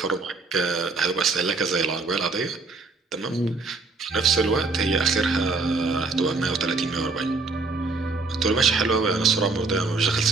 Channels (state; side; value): quieter; left; 3.8 dB